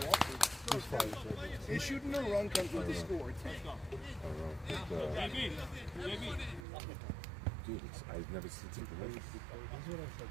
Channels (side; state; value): left; drops out; at 6.7 s